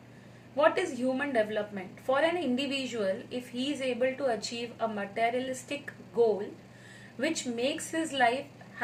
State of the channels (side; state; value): both; identical; correlation 1.00